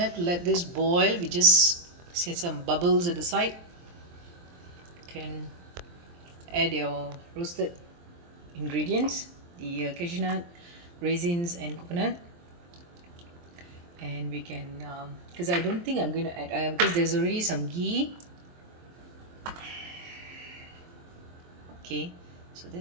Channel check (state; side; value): late; left; 23 ms